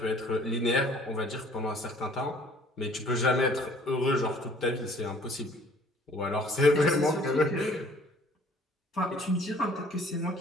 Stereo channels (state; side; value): normal; both; correlation 0.55